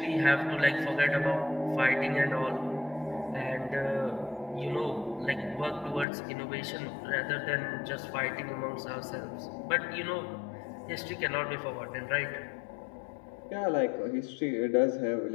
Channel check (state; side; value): drops out; right; at 6.1 s